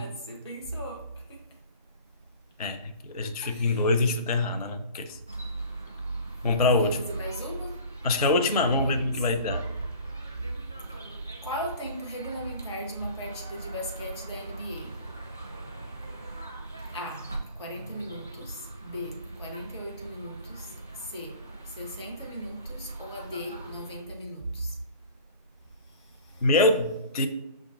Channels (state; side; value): inverted; both; correlation -0.44